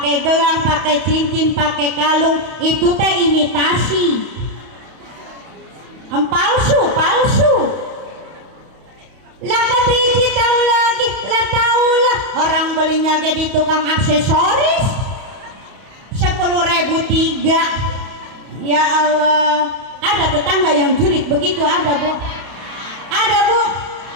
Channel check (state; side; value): late; left; 31 ms